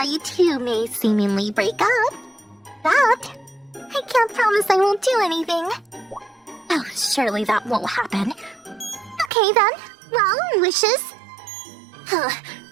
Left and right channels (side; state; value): left; drops out; at 9.3 s